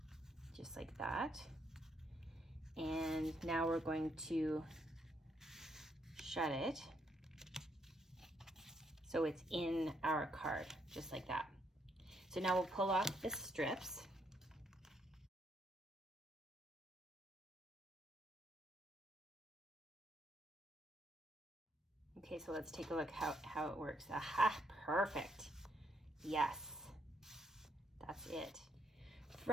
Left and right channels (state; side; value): normal; both; correlation 0.74